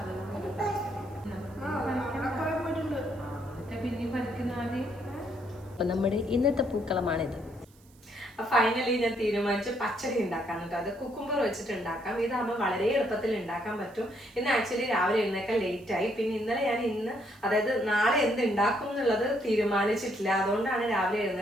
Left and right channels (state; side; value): noise; right; hiss, 29 dB below the sound